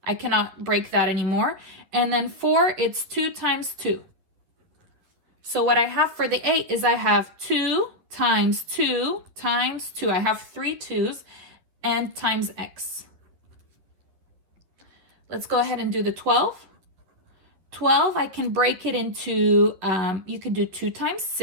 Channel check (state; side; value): late; left; 11 ms